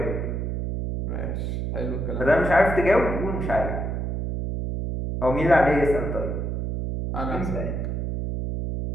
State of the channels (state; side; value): noise; right; hum, 2 dB below the sound